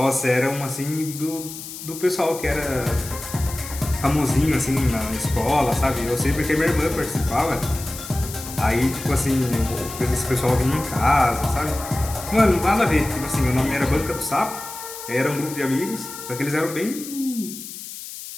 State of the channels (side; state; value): left; noise; hiss, 11 dB below the sound